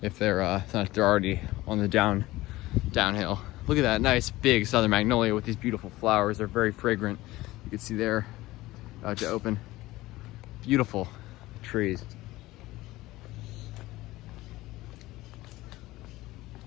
if they're already on the downhill. Look at that nice big southern magnolia with these beautiful flowers. They're very fragrant. You can see there, about to open. Beautiful trees.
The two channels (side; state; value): right; quieter; 18.2 dB